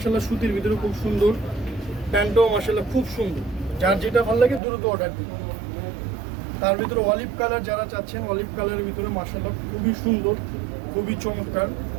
সুতির ভিতরে খুব সুন্দর, প্যান্টটাও মার্শাল্লাহ খুব সুন্দর। যার যেটা ভালো লাগে দ্রুত অর্ডার দিন। তার ভিতরে অলিভ কালার যারা চাচ্ছেন, অলিভ কালারের ভিতরে মার্শাল্লাহ খুবই সুন্দর, খুবই চমৎকার,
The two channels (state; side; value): drops out; left; at 4.6 s